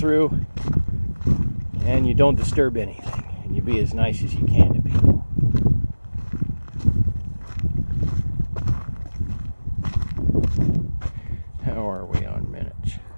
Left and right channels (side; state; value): both; inverted; correlation -1.00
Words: and you don't disturb anything. And you be as nice as you can to people. How are we on minutes?